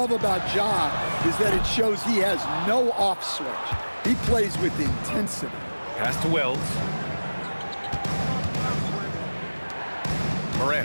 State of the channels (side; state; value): both; inverted; correlation -1.00